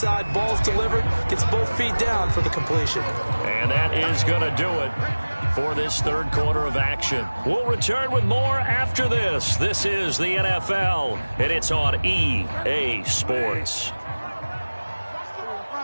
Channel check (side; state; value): both; inverted; correlation -1.00